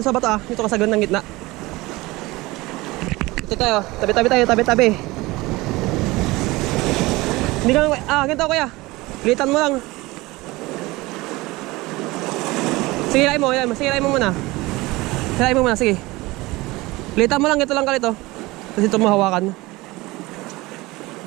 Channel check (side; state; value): left; quieter; 21.0 dB